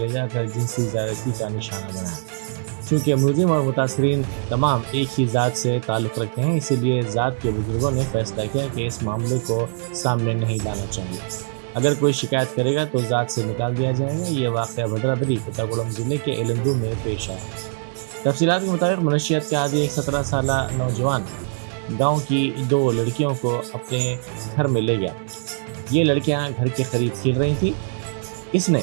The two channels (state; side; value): silent; left; digital silence